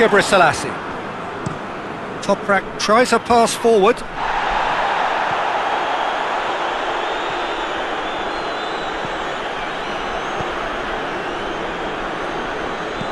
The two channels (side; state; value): both; identical; correlation 1.00